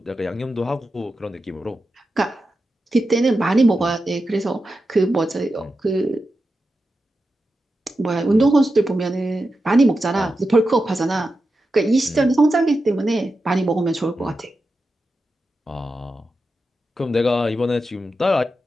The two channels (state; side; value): normal; both; correlation 0.90